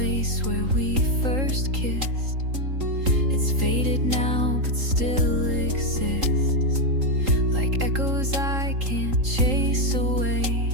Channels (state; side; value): late; left; 3.7 ms